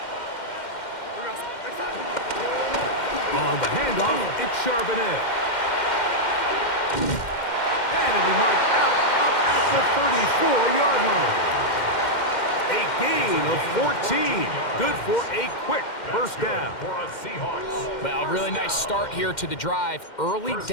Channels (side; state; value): right; late; 2.1 ms